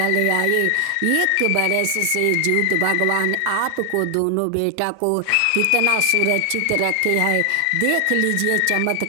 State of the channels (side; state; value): both; different; correlation 0.00